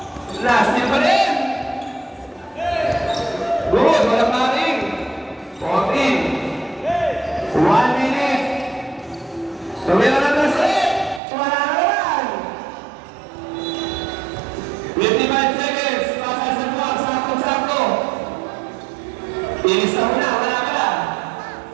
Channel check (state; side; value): drops out; left; at 11.2 s